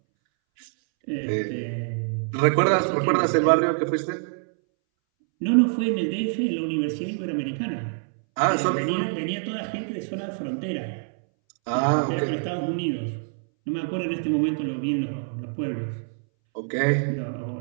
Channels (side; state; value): left; silent; 61 dB below the other